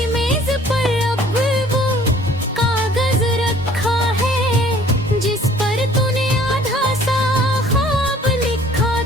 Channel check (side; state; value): both; normal; correlation 0.55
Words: मेज पर अब वो कागज रखा है, जिस पर तूने आधा सा ख्वाब लिखा